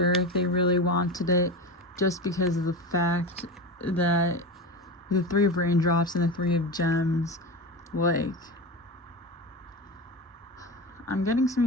if they really wanted it, just because of the fact that the 3 of Raindrops and the 3 of Gems, like, I'm getting some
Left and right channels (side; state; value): both; normal; correlation 0.24